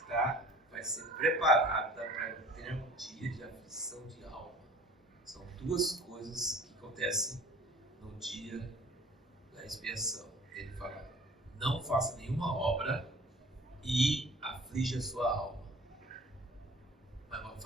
vai ser preparada para ter um dia de aflição de alma. São duas coisas que acontecem no dia da expiação. Ele fala, não faça nenhuma obra e aflige a sua alma. Mas não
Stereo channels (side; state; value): both; normal; correlation 0.48